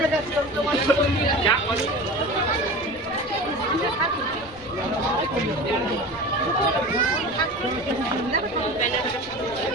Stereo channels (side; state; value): left; noise; rumble, 21 dB below the sound